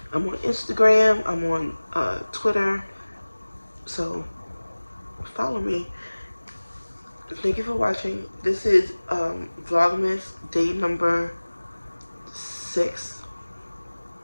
I'm on Instagram, I'm on Twitter, so follow me. Thank you for watching. This is Vlogmas day number 6.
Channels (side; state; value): both; inverted; correlation -1.00